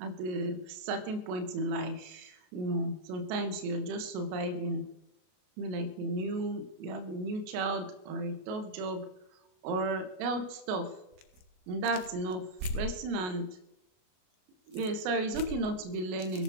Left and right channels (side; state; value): left; late; 33 ms